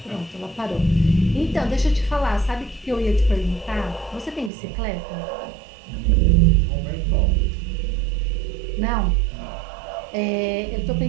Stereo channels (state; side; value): drops out; left; at 4.5 s